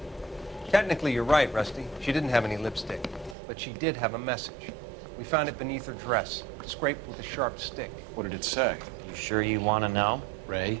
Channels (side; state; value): left; drops out; at 3.4 s